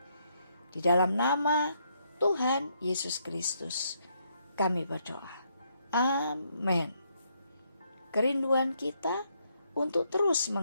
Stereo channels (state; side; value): inverted; both; correlation -0.74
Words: Di dalam nama Tuhan Yesus Kristus kami berdoa. Amin. Kerinduan kita untuk terus